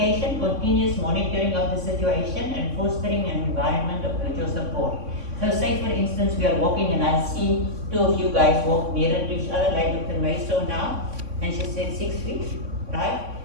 continuous monitoring of the situation, and fostering an environment of mutual support. So say for instance, we are walking and I see 2 of you guys walk nearer to each other, like Dr. May saw now, and she said 6 feet, right?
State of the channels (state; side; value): late; left; 3.6 ms